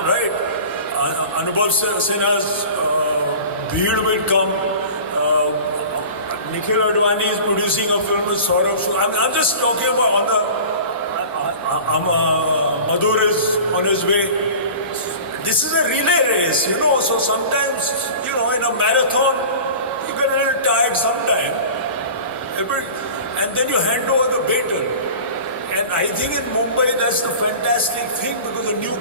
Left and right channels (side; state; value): both; inverted; correlation -0.38